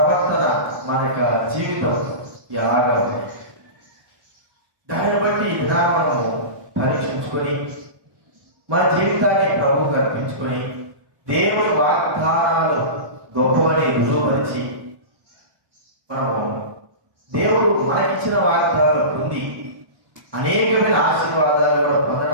మన యొక్క జీవితం ఎలాగా ఉంది, దాన్ని బట్టి ఇలా మనము పరీక్షించుకొని మన జీవితాన్ని ప్రభువుకు అర్పించుకొని దేవుడి వాగ్దానాలు గొప్పవని రుజువుపరిచి మనము దేవుడు మనకిచ్చిన వాగ్దానాలు పొంది అనేకమైన ఆశీర్వాదాలు కూడా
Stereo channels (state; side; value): late; left; 1.2 ms